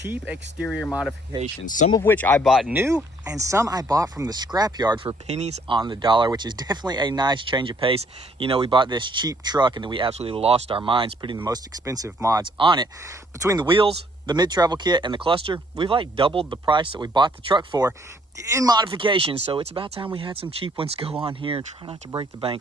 exterior modifications, some of which I bought new and some I bought from the scrapyard for pennies on the dollar, which is definitely a nice change of pace. You know, we bought this cheap truck and then we absolutely lost our minds putting the most expensive mods on it. Between the wheels, the mid-travel kit, and the cluster, we've like doubled the price that we bought the truck for in modification. So it's about time we had some cheap ones go on here and try not to break the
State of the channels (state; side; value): normal; both; correlation 0.65